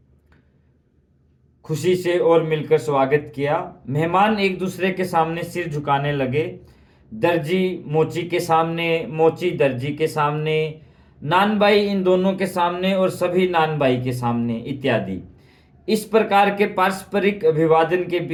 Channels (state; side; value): identical; both; correlation 1.00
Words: खुशी से और मिलकर स्वागत किया। मेहमान एक दूसरे के सामने सिर झुकाने लगे। दर्जी मोची के सामने, मोची दर्जी के सामने, नानबाई इन दोनों के सामने और सभी नानबाई के सामने इत्यादि। इस प्रकार के पारस्परिक अभिवादन के